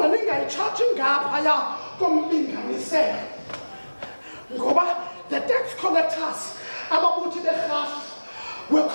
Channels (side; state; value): both; inverted; correlation -1.00